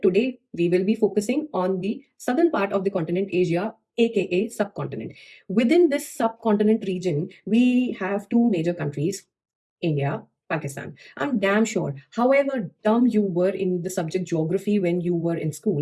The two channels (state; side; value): identical; both; correlation 1.00